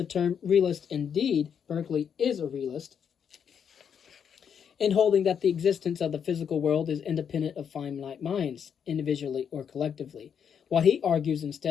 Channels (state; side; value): quieter; right; 7.7 dB